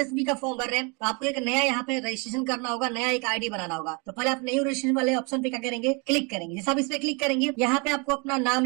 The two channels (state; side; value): quieter; left; 31.6 dB